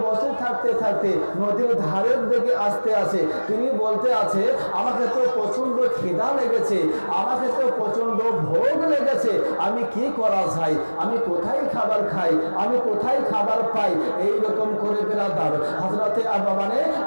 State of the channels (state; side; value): inverted; both; correlation -1.00